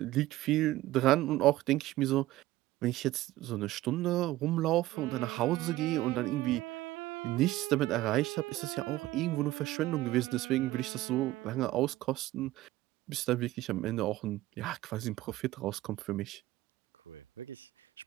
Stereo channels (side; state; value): left; quieter; 16.5 dB